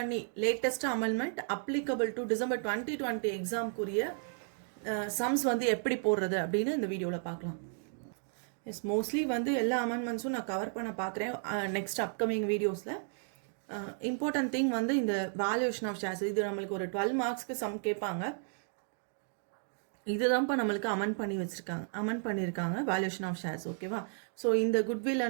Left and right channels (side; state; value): left; silent; 55 dB below the other